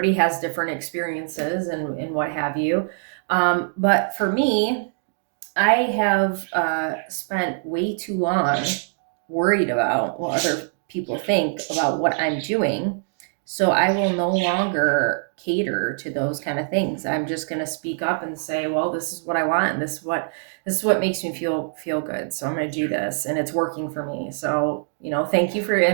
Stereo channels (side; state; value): left; silent; digital silence